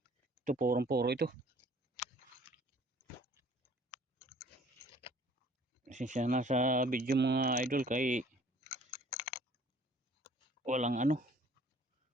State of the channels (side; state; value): both; normal; correlation 0.55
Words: Ito purong-puro ito. Siya nasa video mga idol kay walang ano,